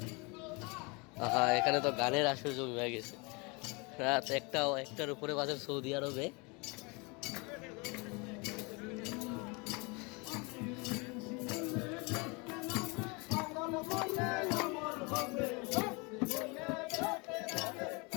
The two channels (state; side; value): quieter; right; 29.1 dB